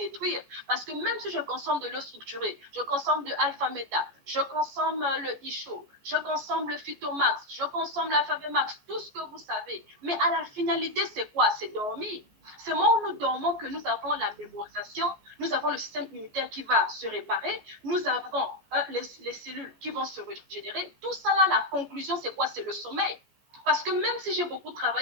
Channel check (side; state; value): left; late; 14 ms